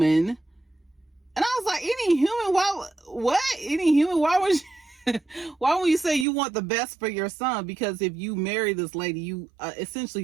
And I was like, any human? What? Any human? Why would you say you want the best for your son? Because if you marry this lady, you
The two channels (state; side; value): drops out; left; at 6.2 s